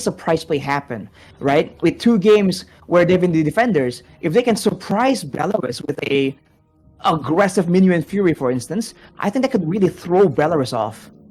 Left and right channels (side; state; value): both; identical; correlation 1.00